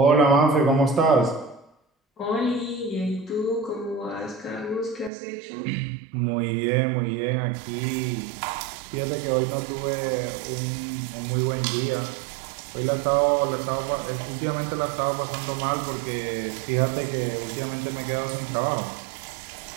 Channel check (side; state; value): left; drops out; at 5.1 s